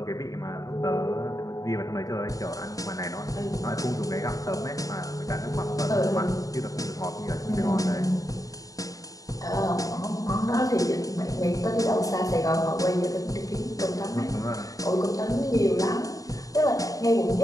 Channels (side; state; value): right; late; 0.17 ms